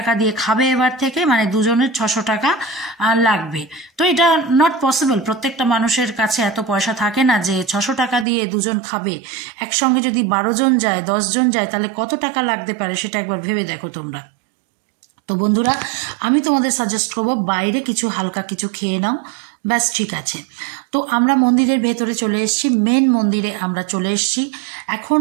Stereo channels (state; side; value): drops out; left; at 8.2 s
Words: দিয়ে খাবে এবার থেকে, মানে দুজনের 600 টাকা লাগবে। তো এটা নট পসিবল, প্রত্যেকটা মানুষের কাছে এত পয়সা থাকে না যে 600 টাকা দিয়ে দুজন খাবে। একসঙ্গে যদি 12 জন যায়, 10 জন যায়, তাহলে কত টাকা লাগতে পারে সেটা একবার ভেবে দেখো তোমরা। তো বন্ধুরা, আমি তোমাদের সাজেস্ট করবো বাইরে কিছু হালকা কিছু খেয়ে নাও, ব্যাস, ঠিক আছে। তো আমরা মন্দিরের ভেতরে চলে এসেছি, মেন মন্দিরে আমরা চলে এসেছি। এখন